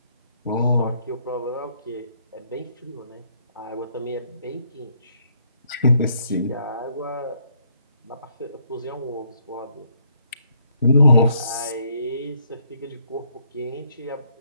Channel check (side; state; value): both; inverted; correlation -0.70